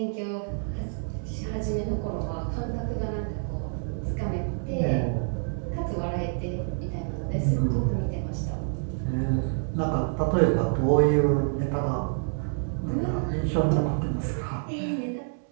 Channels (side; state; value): left; silent; digital silence